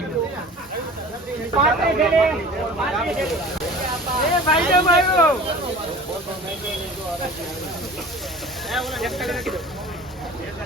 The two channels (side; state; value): both; normal; correlation 0.41